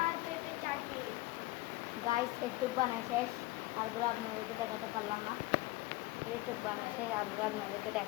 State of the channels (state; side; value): quieter; right; 19.4 dB